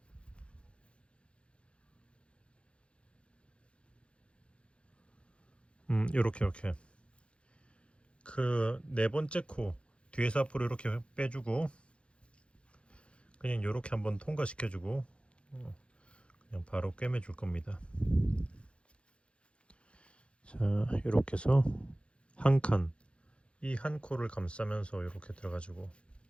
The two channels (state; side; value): late; right; 0.059 ms